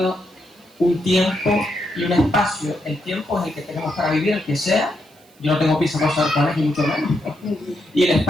un tiempo y un espacio. El tiempo es el que tenemos para vivir, el que sea. Yo no tengo prisa para saber cuál es, ni mucho menos. Y el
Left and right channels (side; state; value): right; noise; hiss, 30 dB below the sound